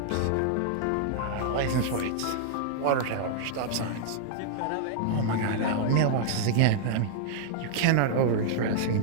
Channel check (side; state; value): both; different; correlation -0.01